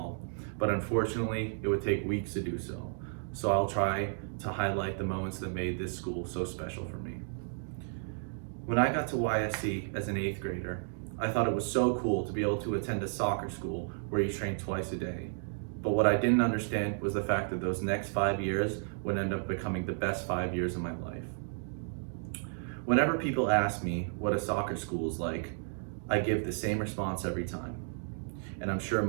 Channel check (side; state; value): left; silent; digital silence